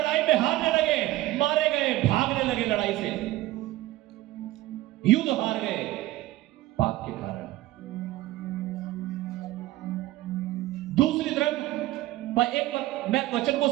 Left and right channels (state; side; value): quieter; left; 16.6 dB